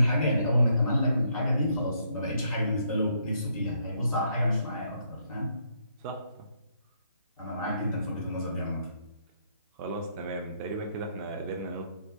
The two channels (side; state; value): both; inverted; correlation -0.73